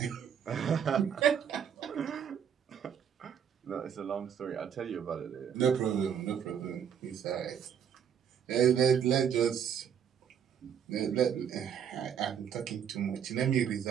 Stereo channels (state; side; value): quieter; left; 8.2 dB